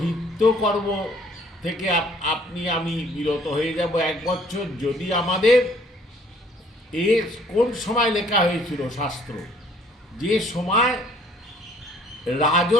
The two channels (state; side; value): normal; both; correlation 0.59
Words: কর্ম থেকে আমি বিরত হয়ে যাব 1 বছর, যদি আমাদের কোন সময় লেখা হয়েছিল শাস্ত্র, যে সময়